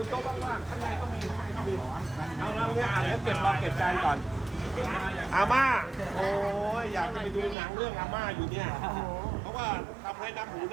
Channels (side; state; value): left; drops out; at 7.6 s